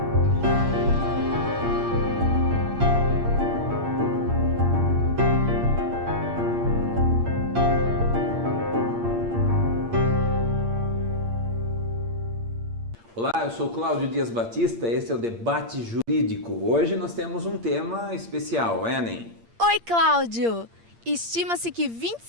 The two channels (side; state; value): left; late; 8.7 ms